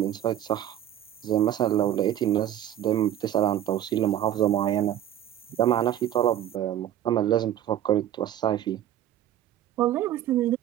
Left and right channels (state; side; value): quieter; left; 11.5 dB